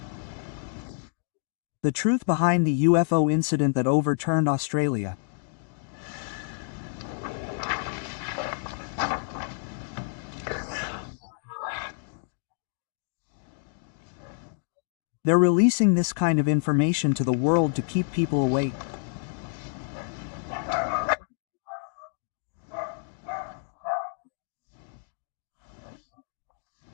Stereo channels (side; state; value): right; silent; digital silence